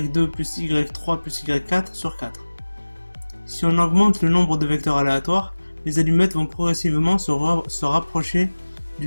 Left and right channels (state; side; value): inverted; both; correlation -1.00